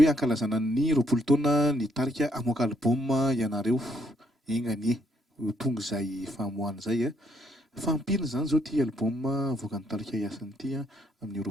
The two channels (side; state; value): both; normal; correlation 0.71